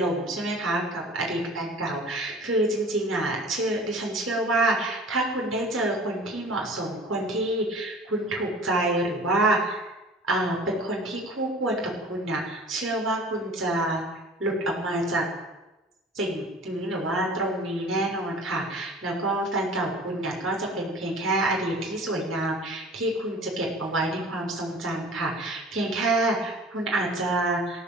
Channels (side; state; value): both; normal; correlation 0.44